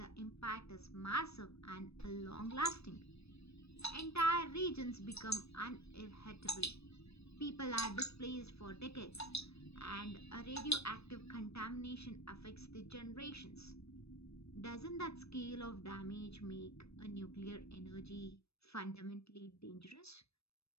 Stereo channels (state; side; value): late; right; 0.78 ms